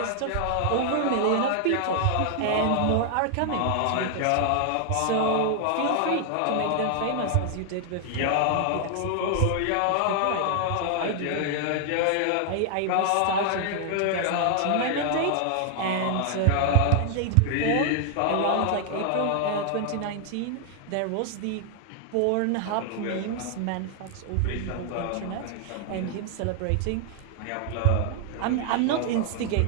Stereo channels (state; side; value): different; both; correlation 0.00